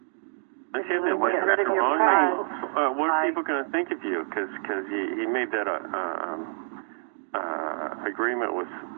What are people going to think of you? Because he made that agreement with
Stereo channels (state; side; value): silent; left; digital silence